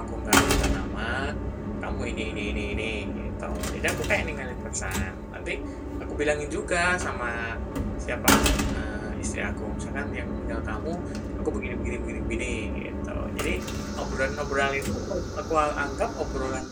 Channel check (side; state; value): both; identical; correlation 1.00